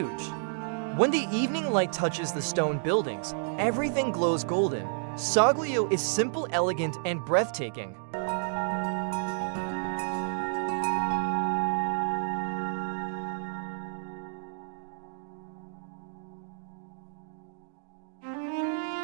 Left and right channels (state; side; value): silent; left; digital silence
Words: When the evening light touches the stone buildings, everything glows golden. Soglio is simple, elegant, and breathtaking.